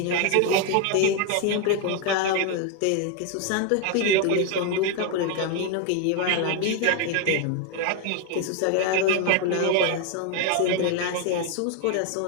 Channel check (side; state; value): both; different; correlation 0.01